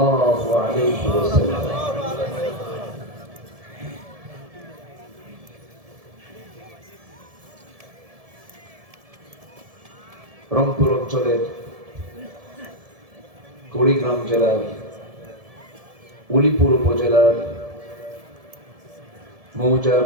আলাইহি ওয়াসাল্লাম রংপুর অঞ্চলের কুড়িগ্রাম জেলার উলিপুর উপজেলার মৌজা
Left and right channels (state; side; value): late; left; 1.7 ms